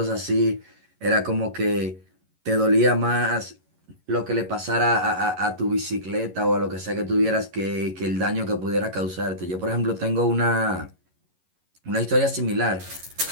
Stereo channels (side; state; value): left; late; 11 ms